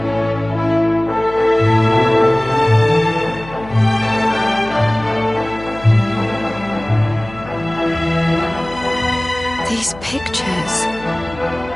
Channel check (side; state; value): left; noise; hum, 17 dB below the sound